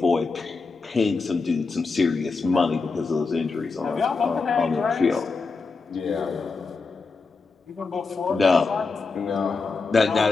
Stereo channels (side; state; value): right; quieter; 4.3 dB